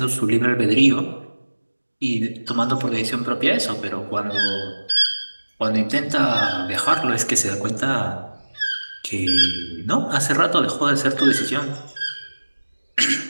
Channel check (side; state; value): both; inverted; correlation -1.00